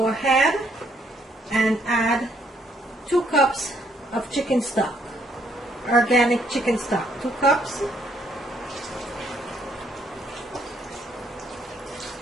ahead and add 2 cups of chicken stock, organic chicken stock, 2 cups.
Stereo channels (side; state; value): both; normal; correlation 0.69